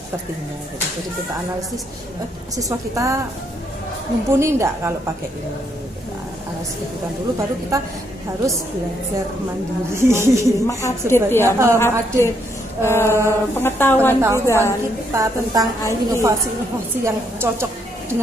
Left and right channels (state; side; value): normal; both; correlation 0.74